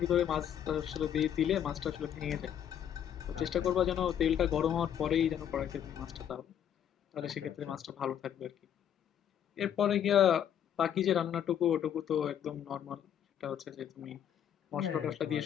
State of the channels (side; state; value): right; quieter; 9.6 dB